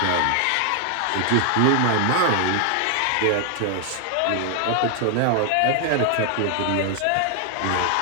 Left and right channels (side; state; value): both; different; correlation 0.00